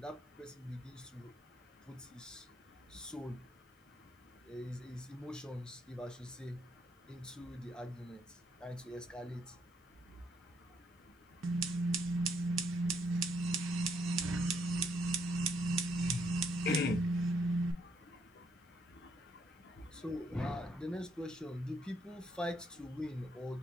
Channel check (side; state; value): both; normal; correlation 0.73